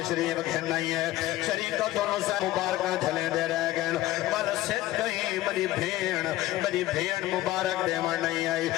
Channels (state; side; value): quieter; right; 16.0 dB